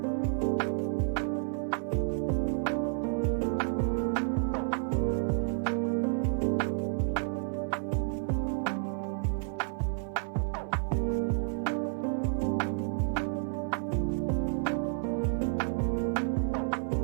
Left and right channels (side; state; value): left; silent; 57 dB below the other